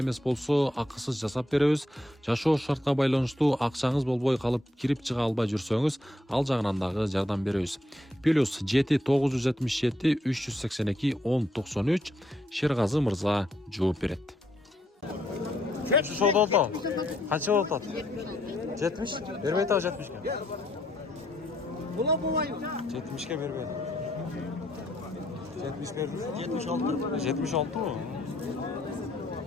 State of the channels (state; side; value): normal; both; correlation 0.74